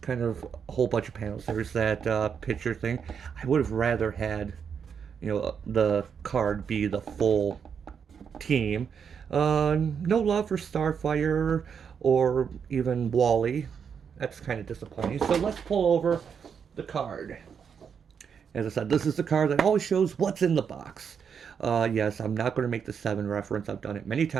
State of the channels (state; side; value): quieter; left; 7.0 dB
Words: kind of a whole bunch of panels. There's that picture thing. I would have rather had, you know, the card be the full team. No love for Starfire or even Wally. That's kind of disappointing. So let's pull over the card. As I said, this is the card that always shows what's in the box. Yes, I'm not going to make the 7 reference. I've done it many